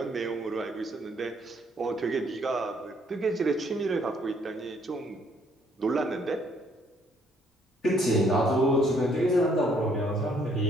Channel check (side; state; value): both; normal; correlation 0.66